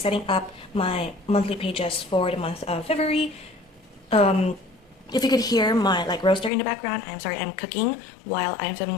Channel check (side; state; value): right; drops out; at 6.5 s